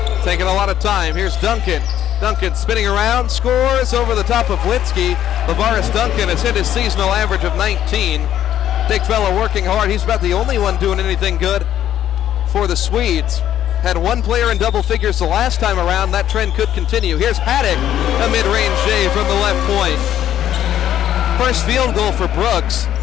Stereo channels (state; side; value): quieter; right; 11.2 dB